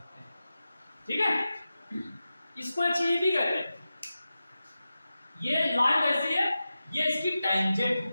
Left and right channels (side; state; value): both; inverted; correlation -0.93